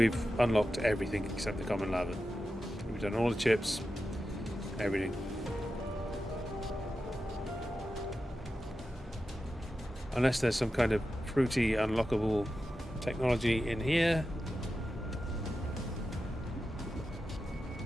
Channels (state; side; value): normal; both; correlation 0.91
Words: unlocked everything except the common lava. We've done all the chips, everything. Unless there's some kind of fruity unlockable technology in here.